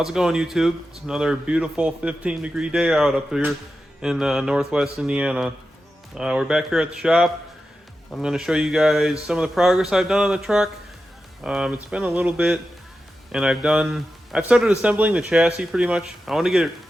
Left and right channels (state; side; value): normal; both; correlation 0.91